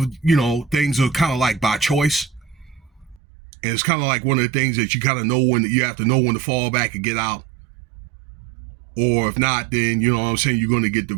things are kind of like by choice, and it's kind of like one of the things that you kind of know when you have to know when to fall back and get out, or if not, then you're going to get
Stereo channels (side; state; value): left; drops out; at 3.2 s